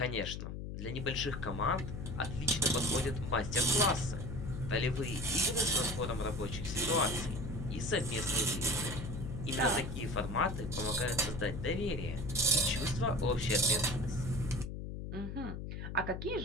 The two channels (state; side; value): noise; left; hum, 6 dB below the sound